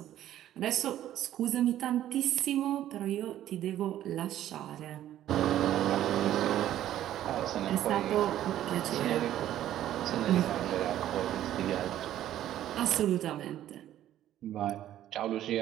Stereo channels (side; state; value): left; quieter; 12.3 dB